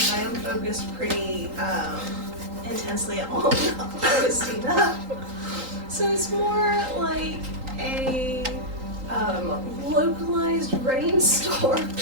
I am focused pretty intensely on Augustina. So it's more like a localized rainstorm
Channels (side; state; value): left; late; 3.8 ms